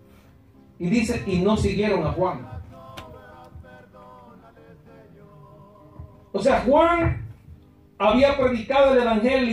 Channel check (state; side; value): identical; both; correlation 1.00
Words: y dice: y no siguieron a Juan. O sea, Juan había predicado el